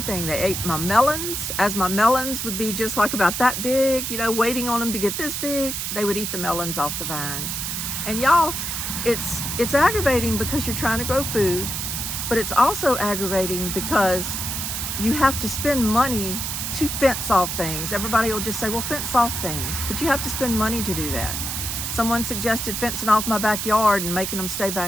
They ate my melons. As my melons would be just like about that big, waiting on them to get this big, they would eat the melons off the vines. And y'all, it's aggravating because you're trying to grow food, but it's also aggravating because you have to spend money to fence off things. Everybody will just say, well, fence off things, but you have to spend money to do that. Someone suggested fencing off my backyard and making them stay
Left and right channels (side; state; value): right; noise; hiss, 3 dB below the sound